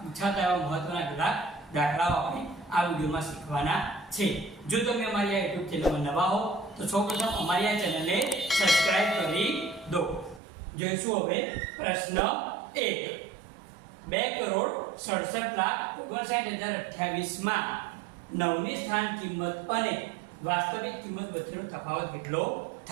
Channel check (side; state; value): left; drops out; at 10.4 s